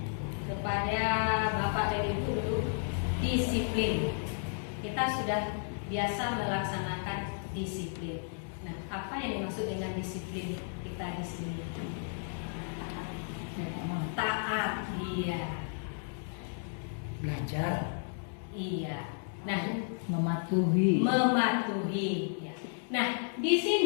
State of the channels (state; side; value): silent; right; digital silence